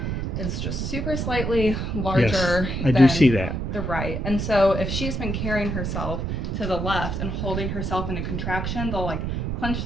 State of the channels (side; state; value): right; noise; rumble, 2 dB below the sound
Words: is just super slightly larger I than do see that. the right. And so if she's been carrying herself to the left and holding herself in a contraction, they'll like clench